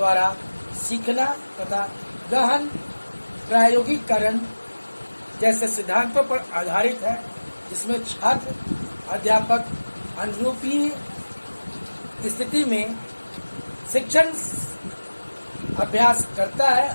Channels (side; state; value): both; inverted; correlation -1.00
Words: सीखना तथा गहन प्रायोगिकरण जैसे सिद्धांतों पर आधारित है, जिसमें छात्र अध्यापक अनुरूपी स्थिति में शिक्षण अभ्यास करता